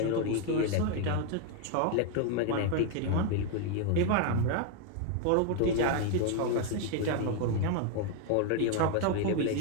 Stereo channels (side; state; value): both; different; correlation 0.01